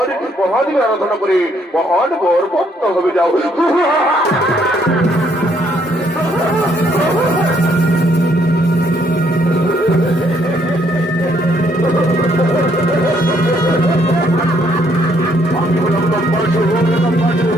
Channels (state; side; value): normal; both; correlation 0.69